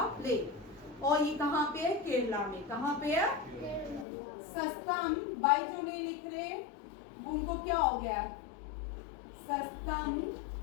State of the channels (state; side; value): drops out; right; at 4.0 s